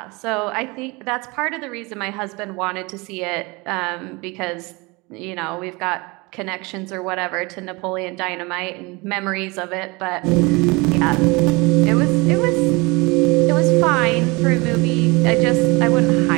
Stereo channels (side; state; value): left; quieter; 25.9 dB